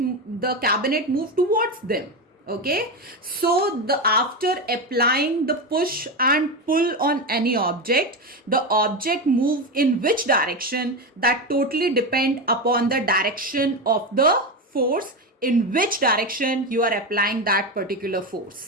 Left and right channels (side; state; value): both; normal; correlation 0.16